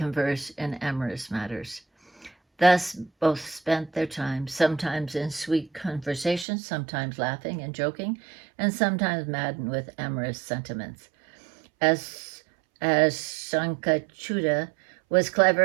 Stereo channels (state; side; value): drops out; left; at 6.5 s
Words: in amorous matters. Thus, both spent their time, sometimes in sweet conversation, sometimes laughing and joking, and sometimes maddened with amorous sentiments. As Sankachuda was